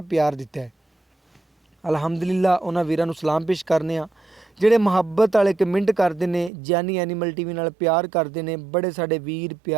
प्यार दिता है। अलहमदुलिल्लाह उन्हां वीरां नूं सलाम पेश करने आ ਜਿਹੜੇ ਮੁਹੱਬਤ वाले कमेंट करते हैं, जानी एनीमल टीवी नाल प्यार करते हैं। बड़े साडे वीर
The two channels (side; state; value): left; drops out; at 6.5 s